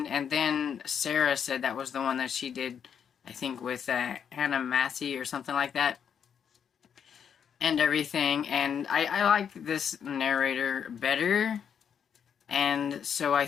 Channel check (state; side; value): quieter; right; 7.7 dB